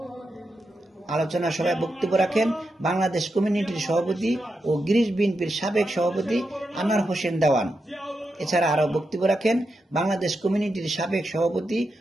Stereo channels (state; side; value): normal; both; correlation 0.87